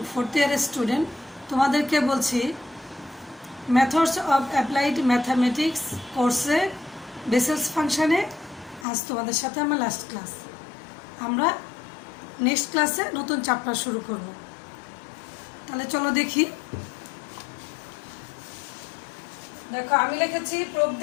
ফোর্থ ইয়ারের স্টুডেন্ট, তোমাদেরকে বলছি মেথডস অফ অ্যাপ্লাইড ম্যাথামেটিক্স কোর্সে বেসেলস ফাংশানে আজ তোমাদের সাথে আমার লাস্ট ক্লাস। আমরা নেক্সট ক্লাসে নতুন চ্যাপ্টার শুরু করব। তাহলে চলো দেখি। দেখো, আমি লিখেছি প্রুফ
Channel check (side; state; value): right; drops out; at 8.8 s